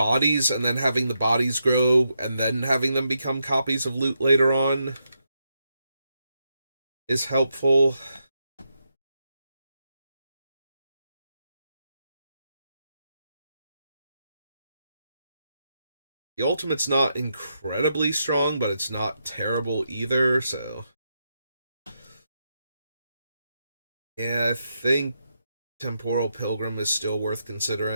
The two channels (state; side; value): inverted; both; correlation -0.83